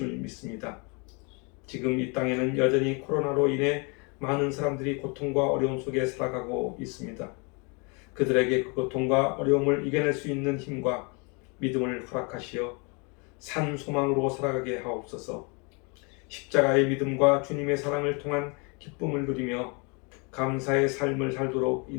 믿습니다. 지금 이 땅에는 여전히 코로나로 인해 많은 사람들이 고통과 어려움 속에 살아가고 있습니다. 그들에게 그 고통과 어려움을 이겨낼 수 있는 힘과 믿음을 허락하시어 산 소망으로 살아가게 하옵소서. 십자가의 믿음과 주님의 사랑을 통한 기쁨을 누리며 감사의 삶을 살도록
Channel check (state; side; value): quieter; right; 32.4 dB